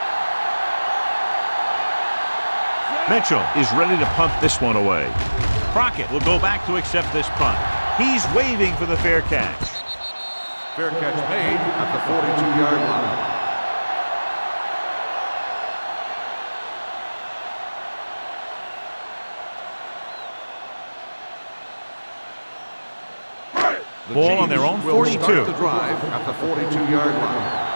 Mitchell is ready to punt this one away. Crockett will go back to accept this punt. He's waving for the fair catch. Fair catch made at the 42-yard line. Ball on their own 42. Start the drive at the 42-yard line.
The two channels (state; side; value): inverted; both; correlation -1.00